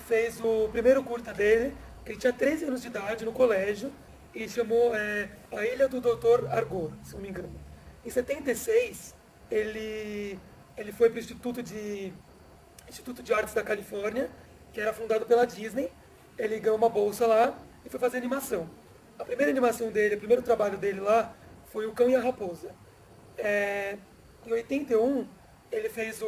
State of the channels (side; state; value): both; identical; correlation 1.00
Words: o primeiro curta dele, que ele tinha 13 anos de idade no colégio, e chamou A Ilha do Dr. Argor, se não me engano. Em 76, ele foi para o Instituto de Artes da Califórnia, que era fundado pela Disney. Ele ganhou uma bolsa lá e foi fazer animação. A primeira animação dele, o primeiro trabalho dele lá, foi O Cão e a Raposa. É, Em 81, ele fez